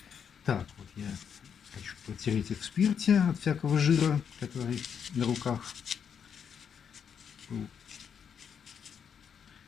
Так, вот я хочу протереть их в спирте от всякого жира, который на руках был,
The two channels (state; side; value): quieter; right; 7.5 dB